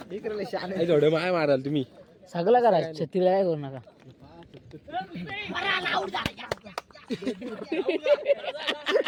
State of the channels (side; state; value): both; identical; correlation 1.00